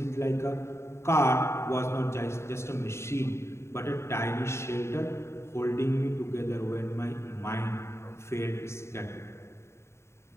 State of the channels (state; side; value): late; right; 0.13 ms